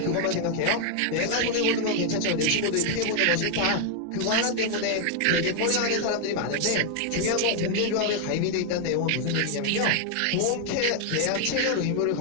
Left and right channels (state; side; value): different; both; correlation 0.00